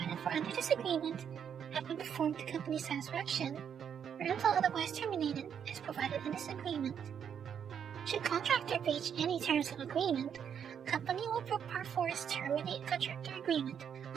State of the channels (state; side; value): quieter; left; 8.1 dB